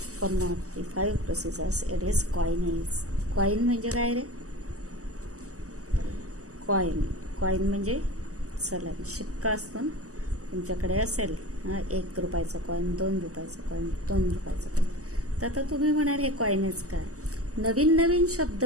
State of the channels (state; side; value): late; left; 0.66 ms